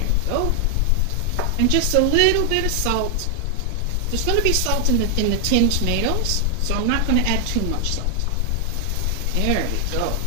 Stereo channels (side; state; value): both; different; correlation 0.00